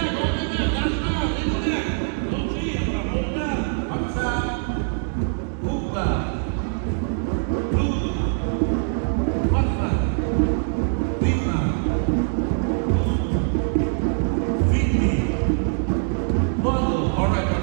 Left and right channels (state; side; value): silent; left; 63 dB below the other